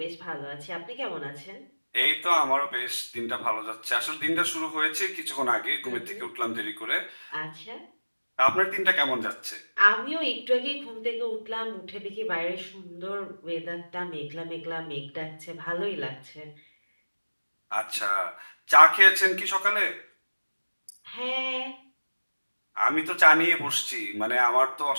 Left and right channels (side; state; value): both; inverted; correlation -1.00